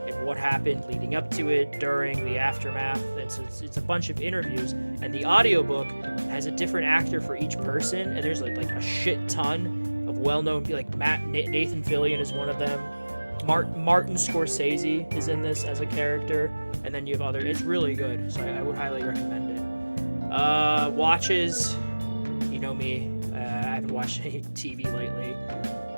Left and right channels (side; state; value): both; inverted; correlation -1.00